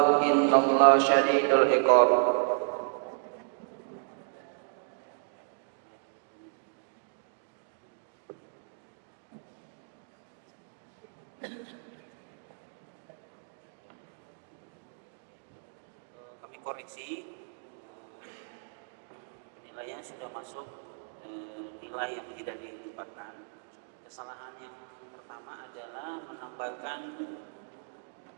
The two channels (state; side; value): silent; left; digital silence